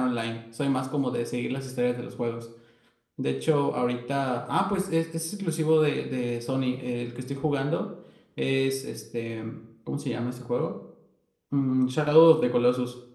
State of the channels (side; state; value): both; identical; correlation 1.00